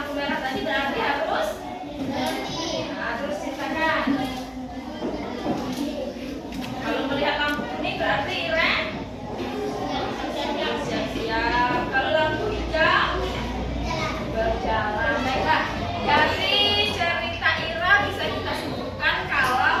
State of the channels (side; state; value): both; identical; correlation 1.00